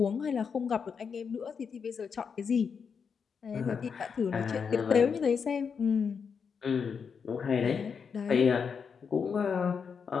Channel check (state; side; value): quieter; right; 6.2 dB